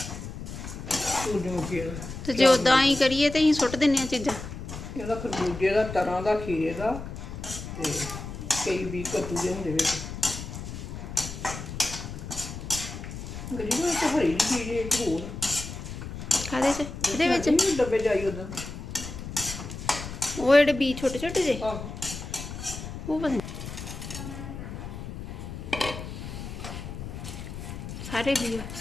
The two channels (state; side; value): noise; left; rumble, 9 dB below the sound